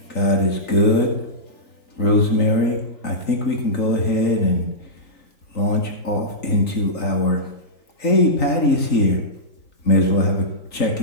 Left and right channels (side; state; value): right; late; 3.9 ms